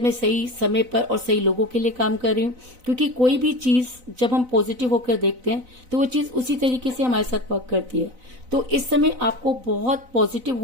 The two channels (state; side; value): late; left; 4.0 ms